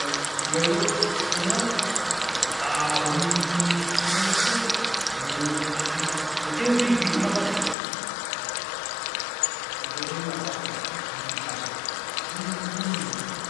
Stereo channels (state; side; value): drops out; right; at 7.8 s